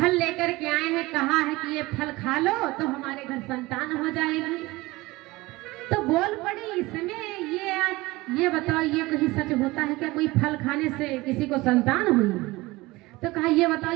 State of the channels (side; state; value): left; quieter; 20.8 dB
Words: लेकर के आए हैं, कहा है कि ये फल खा लो तो हमारे घर संतान हो जाएगी। तो बोल पड़ी इसमें ये बताओ ये कहीं सच होता है क्या? कोई फल खाने से किसी को संतान हुई? तो कहा ये बताओ